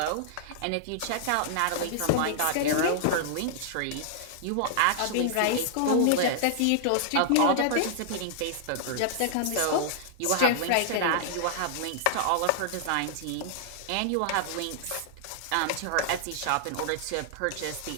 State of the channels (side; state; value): both; different; correlation -0.01